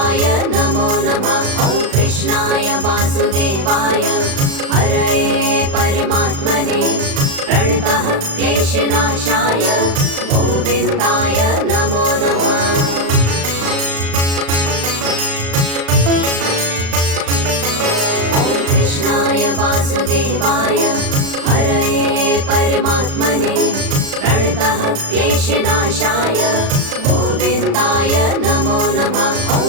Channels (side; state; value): left; late; 36 ms